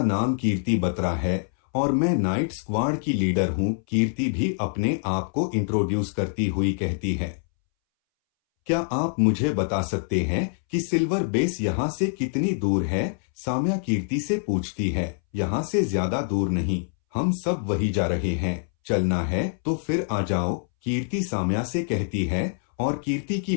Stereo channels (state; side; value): silent; right; 62 dB below the other